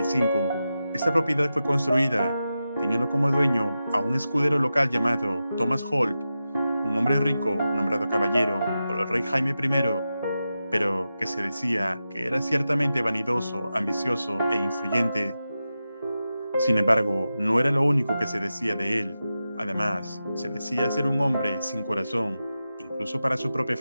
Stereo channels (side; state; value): both; inverted; correlation -0.92